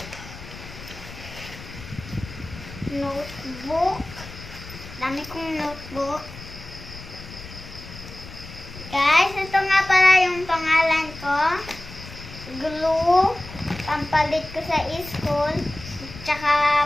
Notebook. Dami kong notebook. Guys, ito nga pala yung pangalan ko. Glue. Pampalit ko sa school. Tsaka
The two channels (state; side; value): noise; left; rumble, 15 dB below the sound